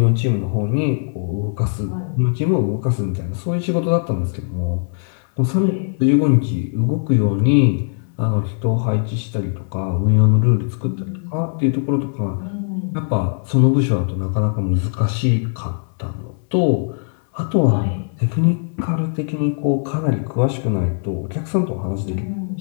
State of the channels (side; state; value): right; silent; digital silence